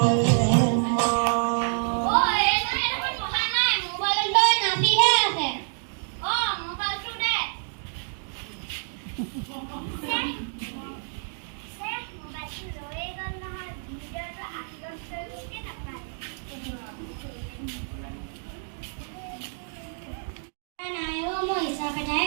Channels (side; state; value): left; silent; digital silence